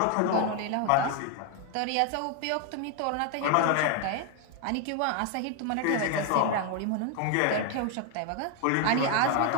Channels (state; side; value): different; both; correlation 0.01